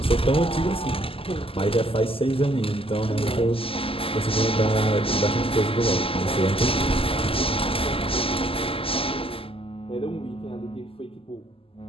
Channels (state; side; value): late; right; 0.26 ms